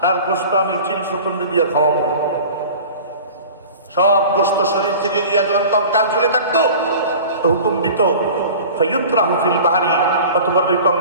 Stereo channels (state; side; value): inverted; both; correlation -0.40